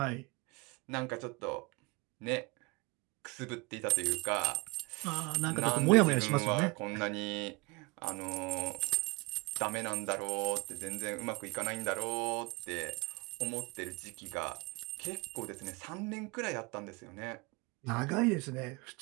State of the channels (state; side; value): quieter; left; 25.5 dB